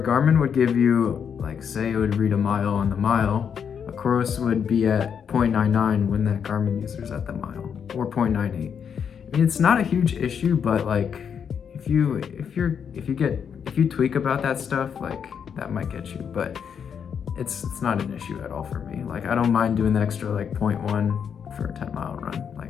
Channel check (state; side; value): quieter; right; 7.4 dB